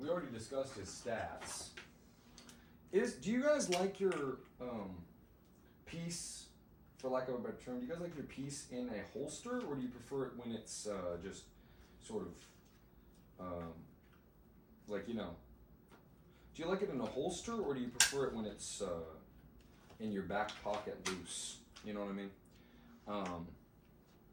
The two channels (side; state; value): both; identical; correlation 1.00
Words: already discussed his stats. Do you guys like your piece, for lack of a better term, do you guys like your piece in a holster, or do you prefer it when it's just sort of like, you know, do you like it in a holster, or do you prefer it when it's in your back pocket loose? You know what I mean?